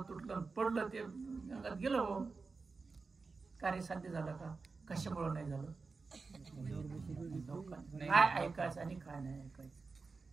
तुटलं, पडलं. ते गंगात गेलं. हो कार्य साध्य झालं का, कशामुळे नाही झालं. काय ऐकायचं आणि काय नाही ऐकायचं,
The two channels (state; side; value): quieter; left; 4.3 dB